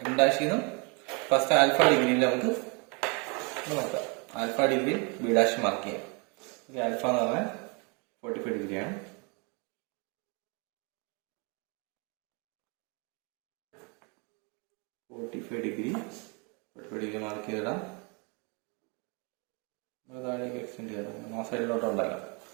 എം ഡാഷിൽ നിന്നും ഫസ്റ്റ് ആൽഫ ഡിഗ്രിയിൽ നമുക്ക് നോക്കാം. Alpha degree B dash mark ചെയ്യാം. ഓക്കെ, ആൽഫ എന്ന് പറഞ്ഞാൽ 45 ഡിഗ്രിയാണ്. ഡിഗ്രി മാർക്ക് ചെയ്തിടാം. താഴേക്ക് എക്സ്റ്റെൻഡ് ചെയ്തിടാം. ആ സൈഡിലോട്ട് ഉണ്ടാക്കാം.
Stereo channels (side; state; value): left; quieter; 32.7 dB